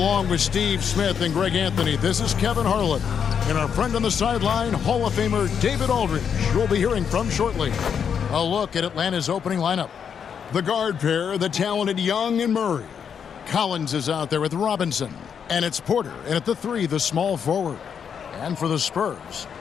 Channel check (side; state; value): right; quieter; 7.4 dB